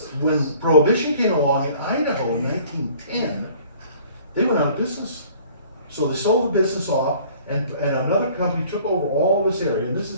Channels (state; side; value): inverted; both; correlation -0.52